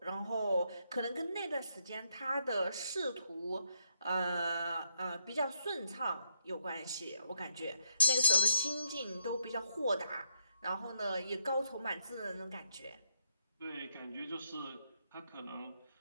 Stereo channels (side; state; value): both; inverted; correlation -0.76